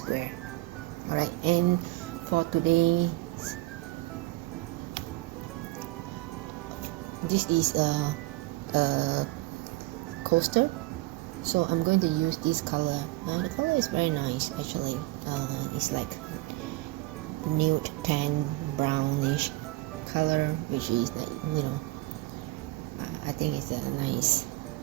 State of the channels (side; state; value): left; quieter; 19.4 dB